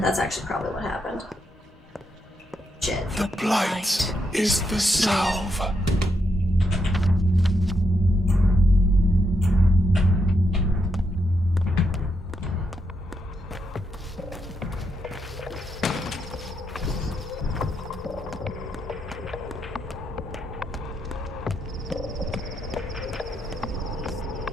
That's actually probably what happened. Shit. The blight is the salve.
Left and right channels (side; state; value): both; normal; correlation 0.81